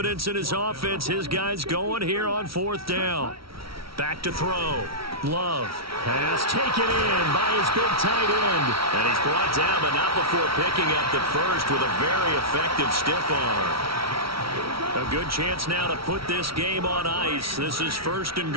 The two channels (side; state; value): left; late; 0.75 ms